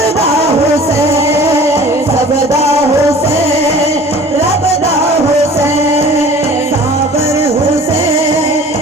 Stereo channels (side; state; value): both; normal; correlation 0.45